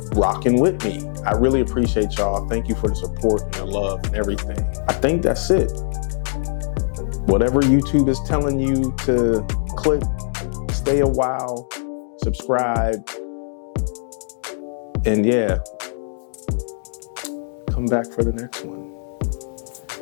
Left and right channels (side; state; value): right; silent; digital silence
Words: rocking with me. I really appreciate y'all. Thank you for the support and the love and everything. I think that's it. Whatever YouTube is telling you to click, stay a while, subscribe, and yeah, come back for the next one.